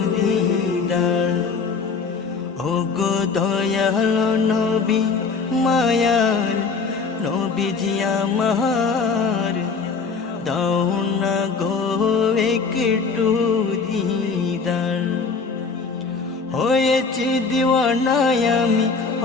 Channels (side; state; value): right; quieter; 4.9 dB